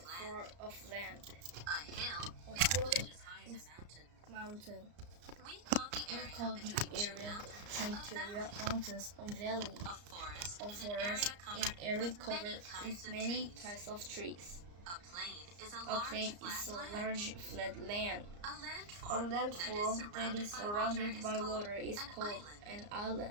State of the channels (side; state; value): left; late; 34 ms